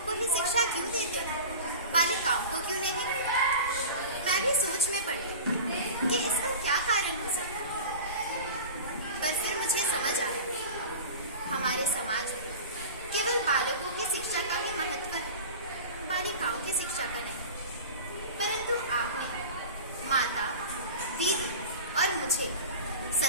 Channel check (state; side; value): inverted; both; correlation -0.34